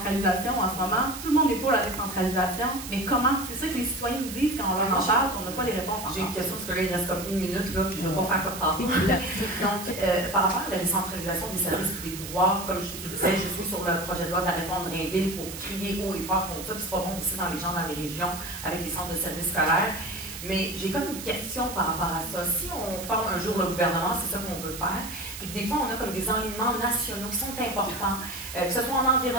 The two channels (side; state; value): right; noise; hiss, 10 dB below the sound